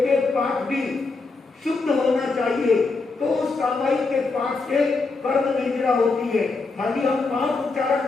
एक पाठ भी शुद्ध होना चाहिए, तो उस सामायिक के पाठ से कर्म निद्रा होती है। खाली हम पाठ उच्चारण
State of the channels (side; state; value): right; quieter; 3.9 dB